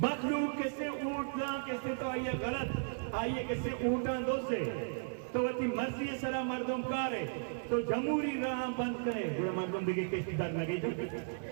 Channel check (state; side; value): silent; left; digital silence